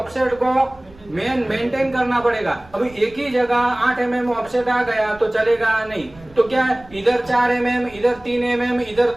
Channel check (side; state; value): right; noise; rumble, 23 dB below the sound